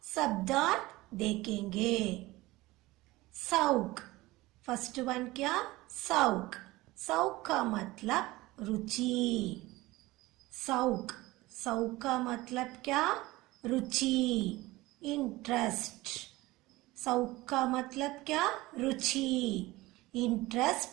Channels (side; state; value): left; quieter; 19.5 dB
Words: शब्दार्थ देखेंगे। शौक, फर्स्ट वन क्या? शौक। शौक का मतलब रुचि। शौक, शौक का मतलब क्या? रुचि, इंटरेस्ट। शौक का मतलब क्या? रुचि,